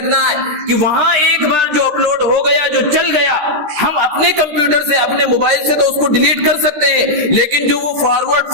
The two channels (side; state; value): left; late; 13 ms